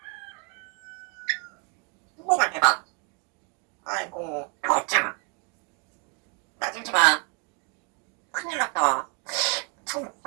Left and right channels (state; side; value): quieter; left; 35.4 dB